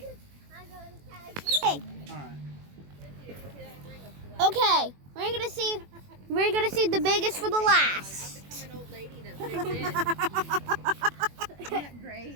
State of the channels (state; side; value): late; left; 21 ms